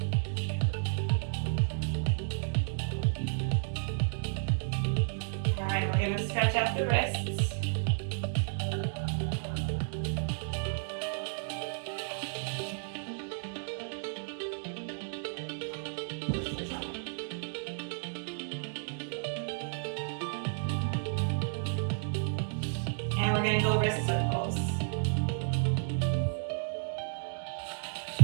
All right, we're gonna stretch out the wrists. And we're gonna go wrist circles.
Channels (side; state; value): left; silent; digital silence